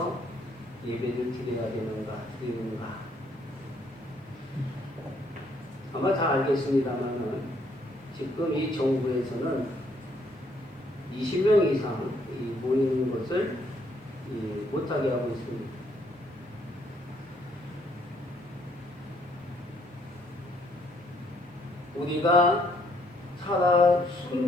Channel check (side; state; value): both; normal; correlation 0.68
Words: 예배를 드려야 드리는가? 아마 다 알겠습니다만은 지금 이 정부에서는 20명 이상 모이는 것을 못하게 하고 있습니다. 우리가 살아